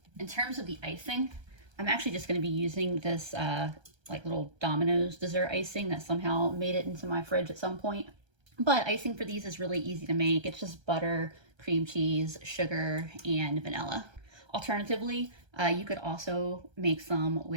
In terms of the icing, I'm actually just going to be using this like little Domino's dessert icing that somehow made it into my fridge at some point. But icing for these is really easy to make. It's just butter, cream cheese, sugar, and vanilla. Alternatively, you could also make some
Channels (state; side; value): late; left; 1.3 ms